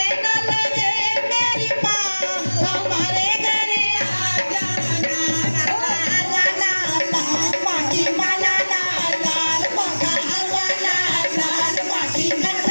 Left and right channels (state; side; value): inverted; both; correlation -1.00